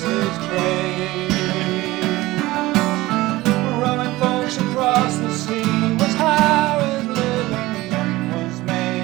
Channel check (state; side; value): quieter; left; 18.6 dB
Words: his trade. Rowing folks across the sea was how his living was